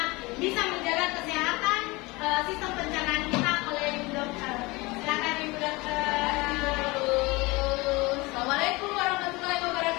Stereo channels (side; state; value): right; quieter; 23.6 dB